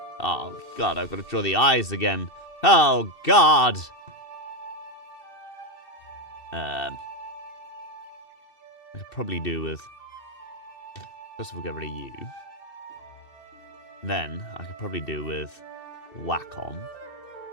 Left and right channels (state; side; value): late; right; 2.7 ms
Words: Oh god, I've got to draw the eyes again. Oh god. I could probably do with, first of all, get rid of you. Then I could probably do with whack on,